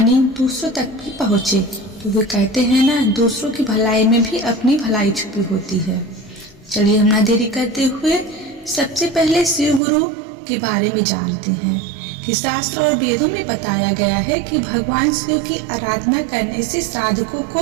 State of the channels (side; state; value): left; drops out; at 9.8 s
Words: दूसरों तक भी पहुँचे। तो वे कहते हैं ना, दूसरों की भलाई में भी अपनी भलाई छुपी होती है। चलिए हम ना देरी करते हुए सबसे पहले शिव गुरु के बारे में जानते हैं कि शास्त्र और वेदों में बताया गया है कि भगवान शिव की आराधना करने से साधकों को